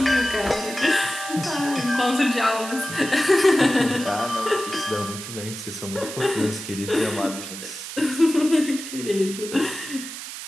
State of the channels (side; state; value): right; noise; hiss, 10 dB below the sound